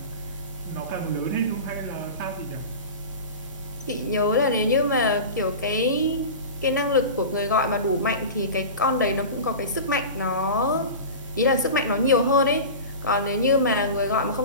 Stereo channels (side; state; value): both; inverted; correlation -0.30